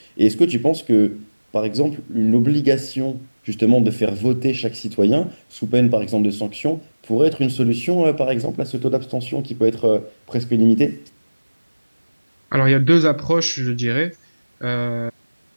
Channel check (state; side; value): inverted; both; correlation -1.00